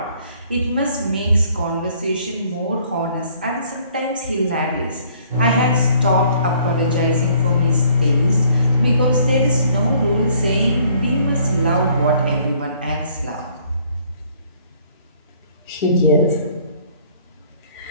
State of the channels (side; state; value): both; inverted; correlation -0.60